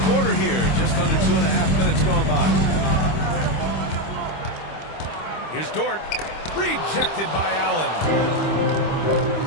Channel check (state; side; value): late; right; 25 ms